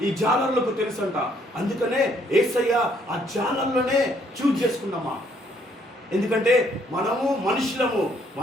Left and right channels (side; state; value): both; normal; correlation 0.67